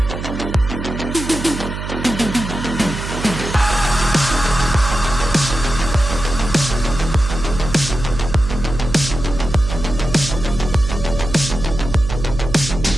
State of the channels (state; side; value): noise; right; hum, 6 dB below the sound